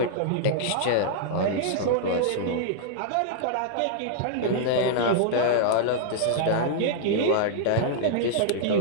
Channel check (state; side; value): different; both; correlation -0.01